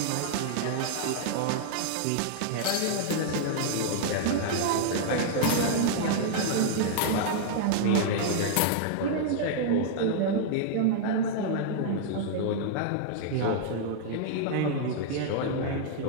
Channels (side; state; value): both; different; correlation -0.01